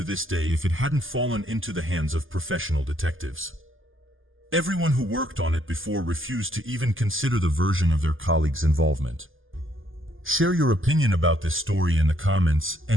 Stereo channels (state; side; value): late; left; 0.59 ms